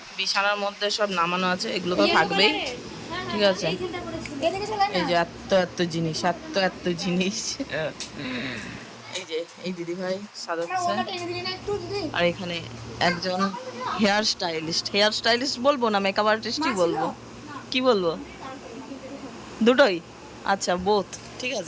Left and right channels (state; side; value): identical; both; correlation 1.00